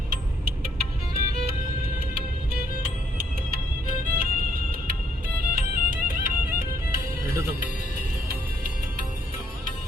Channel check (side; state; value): both; normal; correlation 0.70